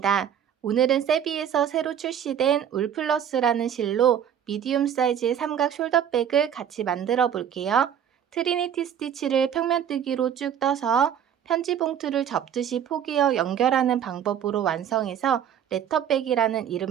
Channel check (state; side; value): quieter; left; 9.2 dB